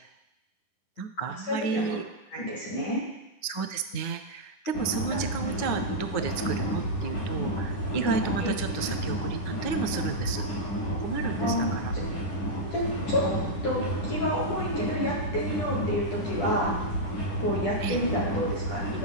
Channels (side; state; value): right; late; 9.6 ms